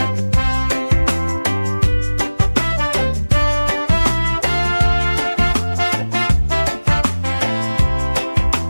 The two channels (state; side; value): inverted; both; correlation -1.00